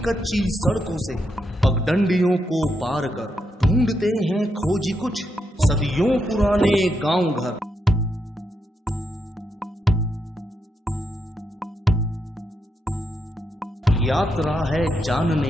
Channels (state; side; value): normal; both; correlation 0.82